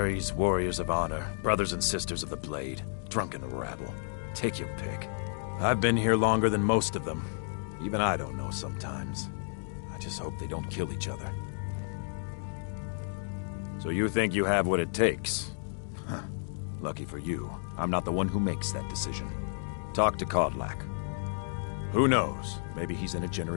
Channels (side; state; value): right; silent; digital silence